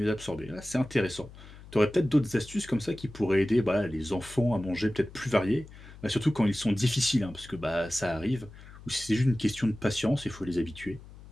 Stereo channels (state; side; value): noise; left; hum, 18 dB below the sound